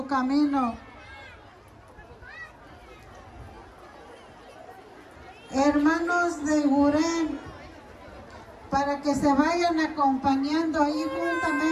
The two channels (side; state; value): both; identical; correlation 1.00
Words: camino. Hermanos de Gurén, para que se vayan acompañando ahí